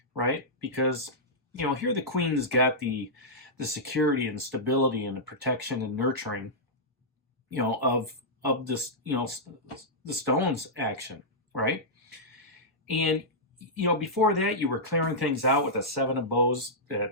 right? Because, here the Queen's got the security and stability and the protection and nurturing, of this, the Stones action, right? And before that, you were clearing things out with a Seven of Bows,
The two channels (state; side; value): normal; both; correlation -0.11